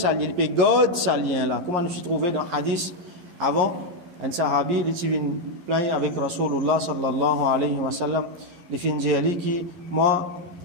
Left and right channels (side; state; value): left; late; 11 ms